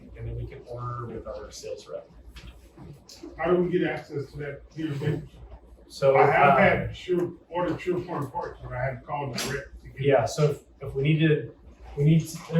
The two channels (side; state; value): both; identical; correlation 1.00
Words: and then we can order with our sales rep. How do we get access to that database? So I have had ordered SurePoint parts, but I haven't called direct to get. yeah, so if we need to,